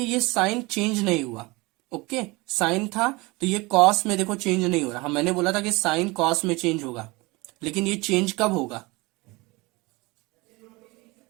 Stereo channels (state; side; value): quieter; left; 24.0 dB